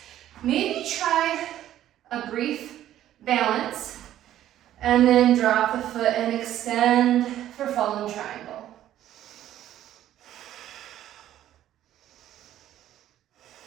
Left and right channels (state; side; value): quieter; left; 12.4 dB